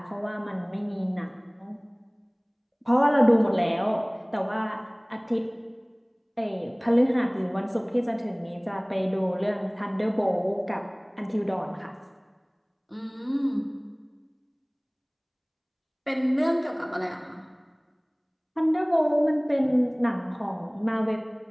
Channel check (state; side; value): identical; both; correlation 1.00